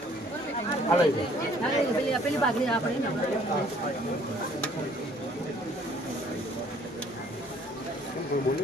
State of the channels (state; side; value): normal; both; correlation 0.59